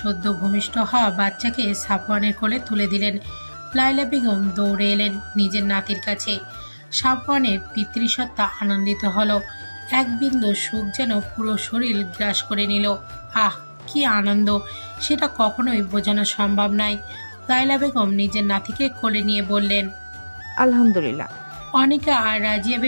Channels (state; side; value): inverted; both; correlation -1.00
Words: ভূমিষ্ঠ হওয়া বাচ্চাকে সাফওয়ানের কোলে তুলে দিলেন। লায়লা বেগম দৌড়ে এলেন নিজের নাতির কাছে। সাফওয়ানের পিতৃসত্তা আনন্দিত হলো। এক বিন্দু সুখ যেন পুরো শরীর গ্রাস করে নিল। আহ, কি আনন্দ, সেটা কখনোই বোঝানো সম্ভব নয়। লায়লা বেগম নিজের নাতিকে কোলে নিয়ে বললেন, আলহামদুলিল্লাহ। অনিকা আর রাজিয়া